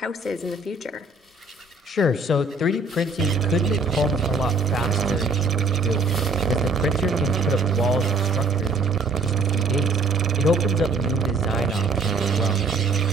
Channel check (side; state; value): left; quieter; 3.3 dB